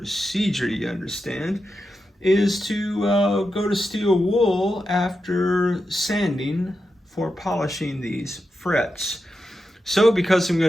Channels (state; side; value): normal; both; correlation 0.88